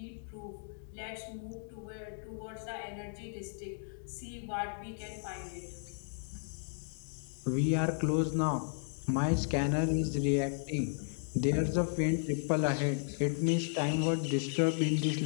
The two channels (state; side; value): silent; right; digital silence